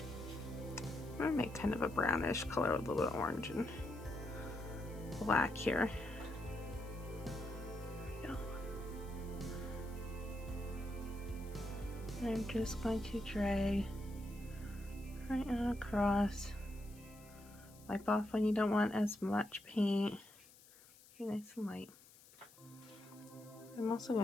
I'm going to make kind of a brownish color with a little bit of orange and black here. There we go. And I'm just going to drag right across. Wipe off when you don't want as much paint. Be nice and light. I'm also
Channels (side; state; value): left; noise; hiss, 23 dB below the sound